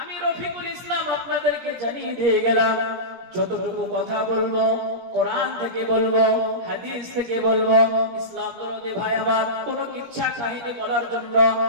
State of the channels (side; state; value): left; late; 17 ms